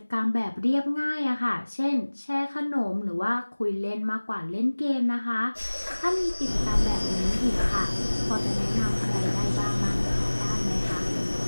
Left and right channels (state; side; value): inverted; both; correlation -1.00